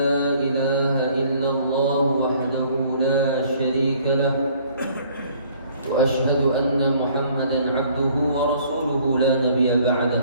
ilaha illallah wahdahu la sharika lah wa ashhadu anna Muhammadan abduhu wa rasuluhu la nabiyya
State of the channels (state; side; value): inverted; both; correlation -0.58